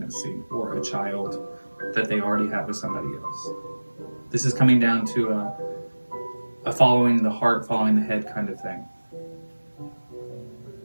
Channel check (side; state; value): both; inverted; correlation -1.00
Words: or a child that they already have with somebody else. This is coming down to a following the heart, following the head kind of thing.